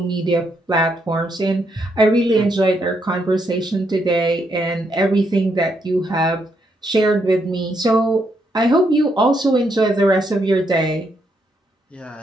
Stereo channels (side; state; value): both; normal; correlation 0.77